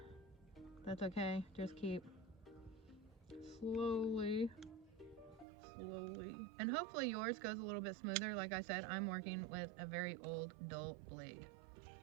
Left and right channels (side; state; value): left; drops out; at 5.5 s